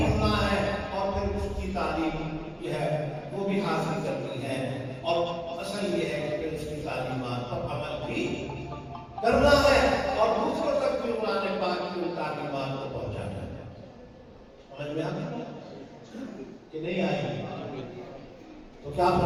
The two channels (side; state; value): both; identical; correlation 1.00